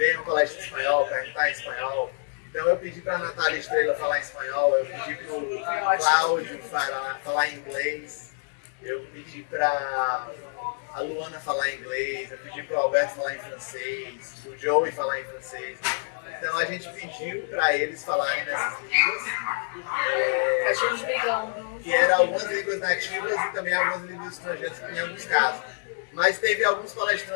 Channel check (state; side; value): silent; right; digital silence